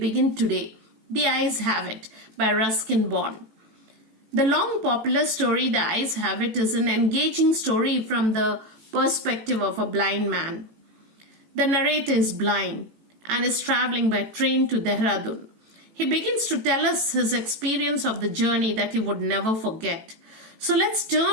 today. The Eyes Have It by Ruskin Bond. The long popular story The Eyes Have It is an engaging story from the perspective of a blind man. The narrator is blind and is traveling by train to Dehradun. He begins to tell us his experience of the journey that he would never forget. So let's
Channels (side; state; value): left; late; 18 ms